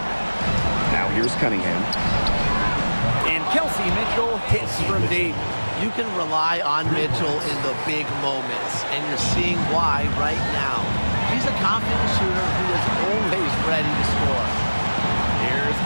Now here's Cunningham. And Kelsey Mitchell hits from deep. You can rely on Mitchell in the big moments, and you're seeing why right now. She's a confident shooter who is always ready to score. Here's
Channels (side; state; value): both; inverted; correlation -1.00